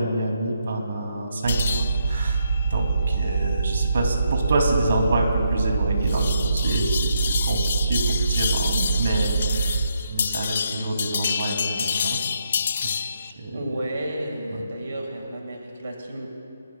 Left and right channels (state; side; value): inverted; both; correlation -0.78